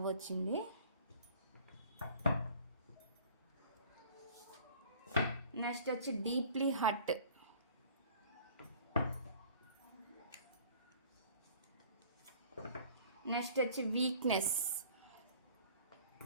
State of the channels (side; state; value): both; inverted; correlation -0.49